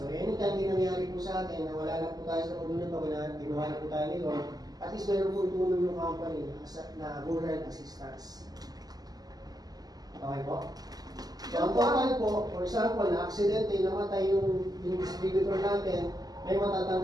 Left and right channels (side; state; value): left; late; 0.19 ms